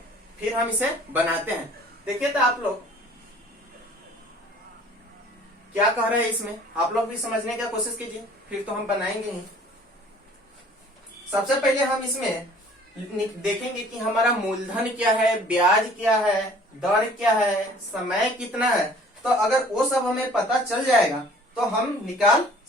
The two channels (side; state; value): both; normal; correlation 0.52